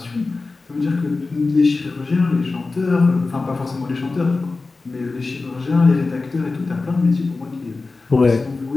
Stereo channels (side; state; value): right; quieter; 3.7 dB